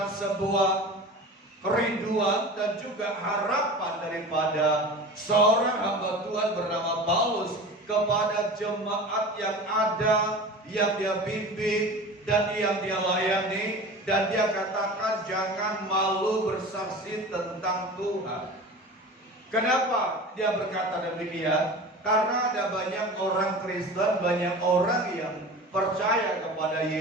sebuah kerinduan dan juga harapan daripada seorang hamba Tuhan bernama Paulus kepada jemaat yang ada, yang dia bimbing dan yang dia layani, dan dia katakan jangan malu bersaksi tentang Tuhan. Kenapa dia berkata demikian? Karena ada banyak orang Kristen, banyak orang yang percaya kepada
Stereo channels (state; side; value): normal; both; correlation 0.35